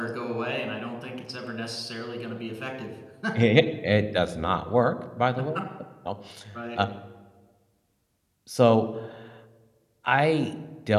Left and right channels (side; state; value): both; identical; correlation 1.00